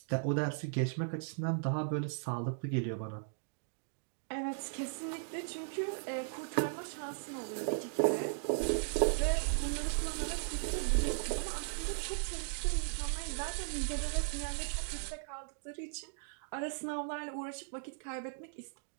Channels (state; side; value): silent; left; digital silence